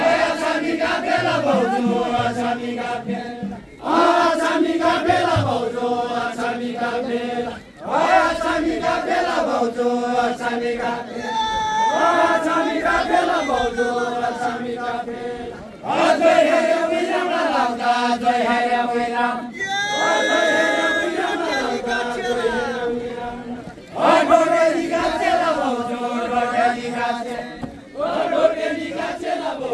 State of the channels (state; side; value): identical; both; correlation 1.00